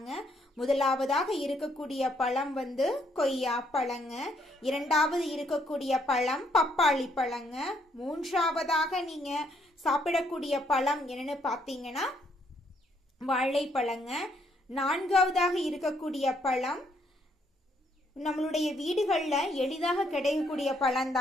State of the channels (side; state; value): both; normal; correlation 0.71